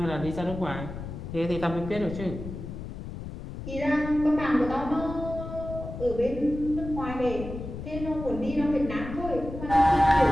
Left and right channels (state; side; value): noise; left; rumble, 9 dB below the sound